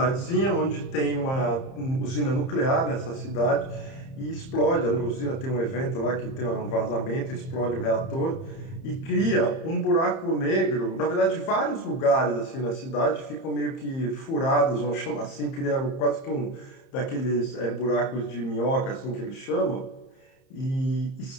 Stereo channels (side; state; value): right; late; 30 ms